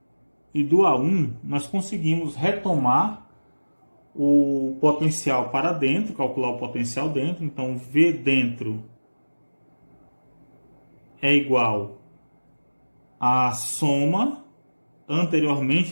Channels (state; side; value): inverted; both; correlation -1.00